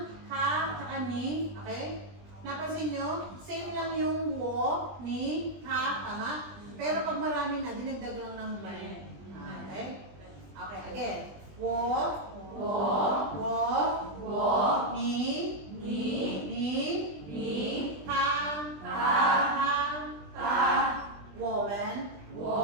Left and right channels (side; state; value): left; late; 20 ms